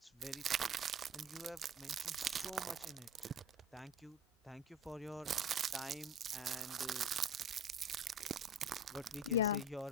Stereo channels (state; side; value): normal; both; correlation 0.37